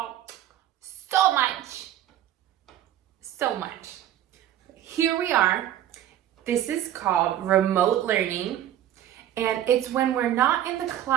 so much. So much. Here we are. This is called remote learning, and it's when we're not in the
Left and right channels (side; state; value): left; quieter; 11.8 dB